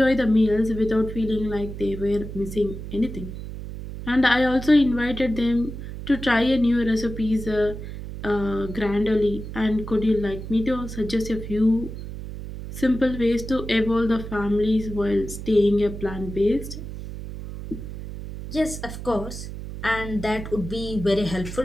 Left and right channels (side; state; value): right; noise; hum, 9 dB below the sound